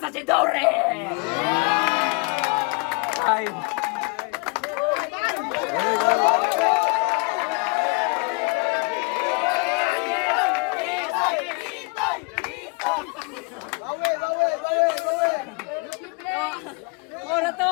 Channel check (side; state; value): right; quieter; 30.8 dB